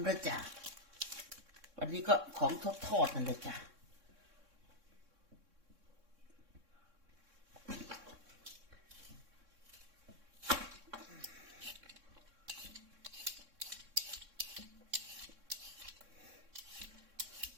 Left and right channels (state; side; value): late; left; 3.6 ms